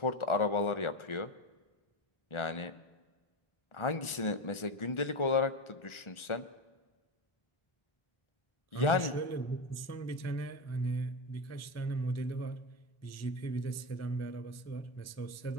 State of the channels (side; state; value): right; late; 1.4 ms